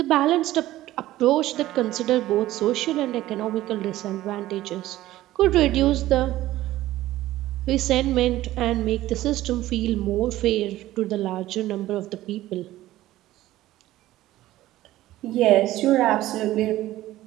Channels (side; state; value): left; quieter; 15.4 dB